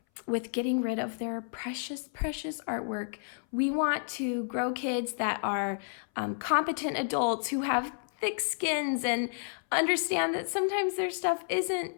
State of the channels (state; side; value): silent; right; 57 dB below the other